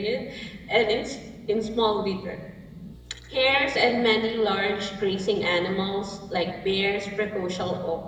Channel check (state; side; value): identical; both; correlation 1.00